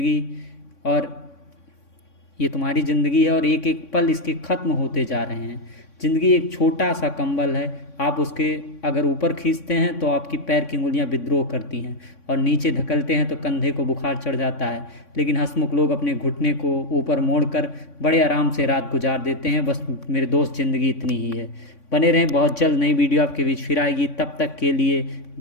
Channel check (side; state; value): right; late; 3.6 ms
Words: है और एक एक पल इसके ख़त्म होते जा रहे हैं। ज़िंदगी एक छोटा सा कंबल है, आप उसके अगर ऊपर खींचते हैं तो आपकी पैर की उंगलियां विद्रोह करती हैं और नीचे धकेलते हैं तो कंधे को बुखार चढ़ जाता है। लेकिन हंसमुख लोग अपने घुटने को ऊपर मोड़कर बड़े आराम से रात गुजार देते हैं। बस मेरे दोस्त, ज़िंदगी इतनी ही है। बने रहें, बहुत जल्द नई वीडियो आपके बीच फिर आएगी। तब तक के लिए